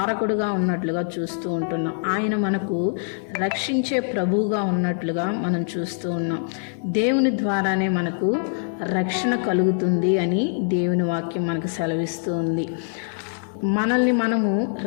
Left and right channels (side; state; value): right; silent; 59 dB below the other